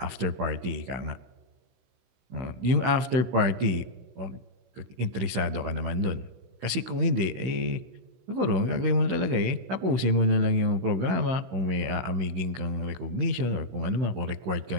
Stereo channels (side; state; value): left; late; 16 ms